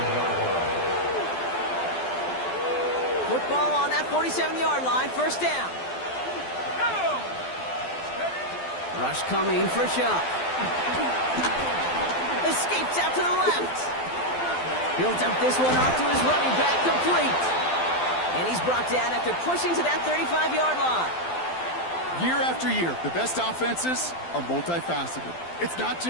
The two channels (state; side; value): late; right; 12 ms